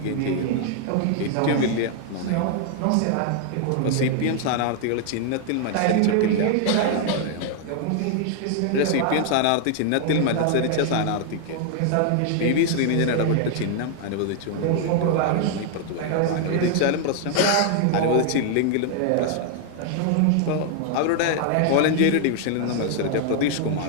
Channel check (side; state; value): both; different; correlation 0.00